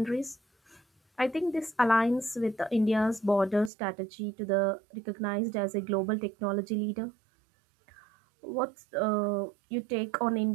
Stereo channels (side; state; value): left; drops out; at 3.7 s